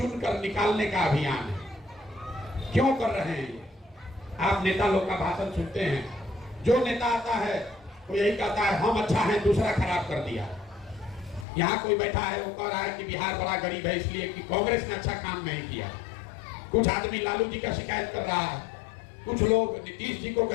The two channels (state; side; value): drops out; right; at 11.5 s